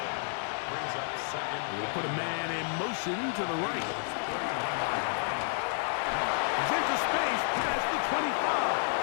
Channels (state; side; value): silent; right; 57 dB below the other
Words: Brings up 2nd. We'll put a man in motion to the right. He's into space past the